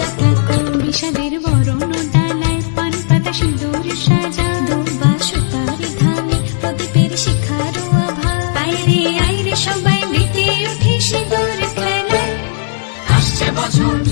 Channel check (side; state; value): right; silent; digital silence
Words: ঠাকুর। বিষাদের বরণ ডালায় পান পাতা সিঁদুর সাজা, দৌপা সুপারি ধানে প্রদীপের শিখারো আভা। আইরে সবাই মেতে উঠে সিঁদুর খেলায়। আসছে বছর